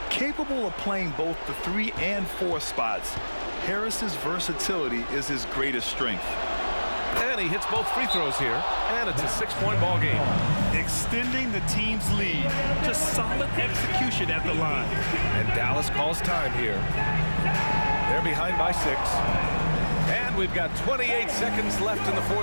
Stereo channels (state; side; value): inverted; both; correlation -1.00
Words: Capable of playing both the 3 and 4 spots, Harris's versatility is his greatest strength. And he hits both free throws here, and it's a 6-point ball game. Extending the team's lead. Just solid execution at the line. And Dallas calls time here. They're behind by 6. And we've got 28 seconds left in the